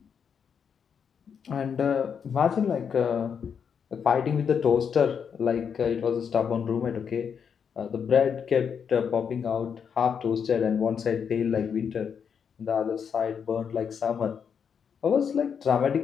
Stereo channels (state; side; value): quieter; right; 7.1 dB